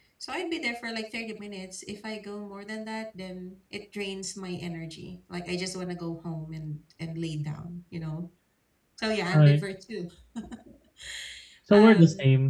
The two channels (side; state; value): both; identical; correlation 1.00